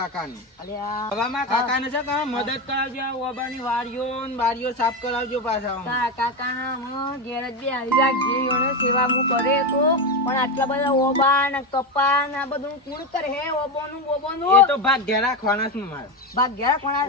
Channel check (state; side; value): normal; both; correlation 0.14